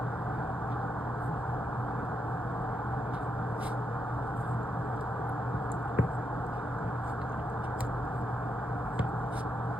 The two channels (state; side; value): normal; both; correlation 0.82